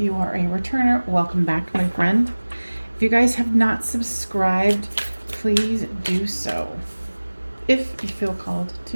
are a returner, welcome back, my friend. If you guys have not subscribed, please do so if you feel called to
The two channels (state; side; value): inverted; both; correlation -1.00